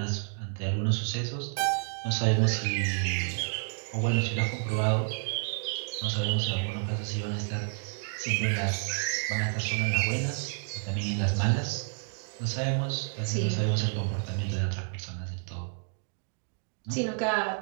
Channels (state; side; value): silent; left; 58 dB below the other